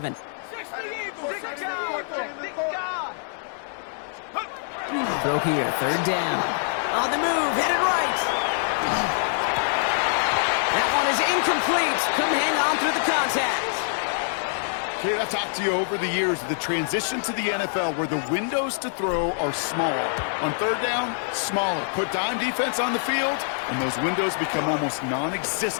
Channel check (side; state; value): right; silent; digital silence